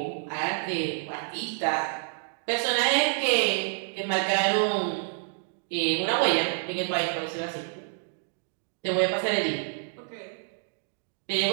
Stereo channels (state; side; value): silent; left; 59 dB below the other